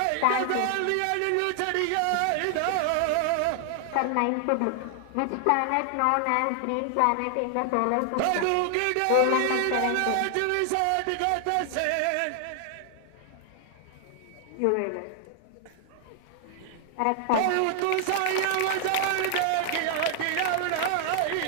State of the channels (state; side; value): different; both; correlation 0.00